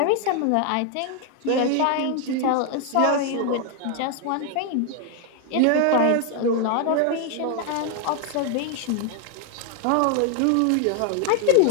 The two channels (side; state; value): both; different; correlation 0.00